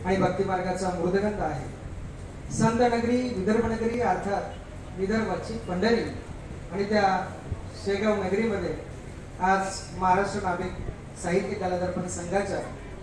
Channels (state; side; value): identical; both; correlation 1.00